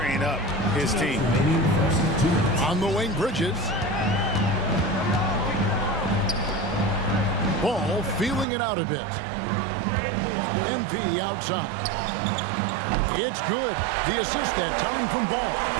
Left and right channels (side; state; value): left; drops out; at 8.5 s